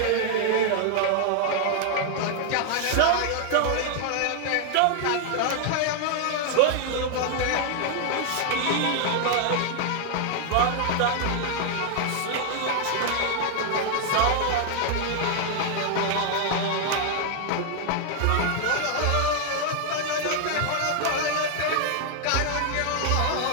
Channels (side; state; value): both; different; correlation 0.00